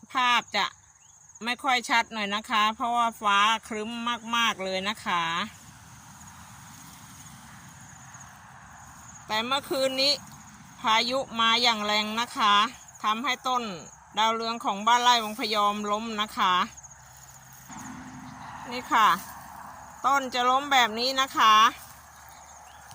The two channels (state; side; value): identical; both; correlation 1.00